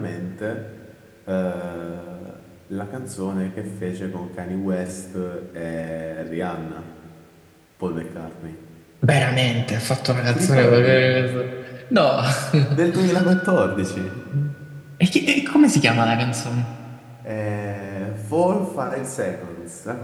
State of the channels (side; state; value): both; identical; correlation 1.00